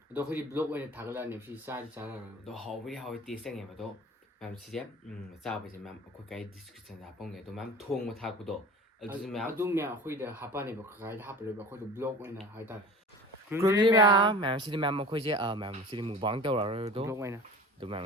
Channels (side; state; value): both; normal; correlation 0.39